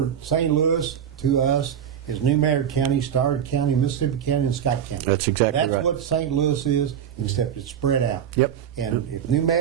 St. Louis to us, is New Madrid County, Starr County, Mississippi County, and Scott County. That's exactly right. That's what St. Louis is, except it's spread out. Yep. And if New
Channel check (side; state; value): left; quieter; 8.9 dB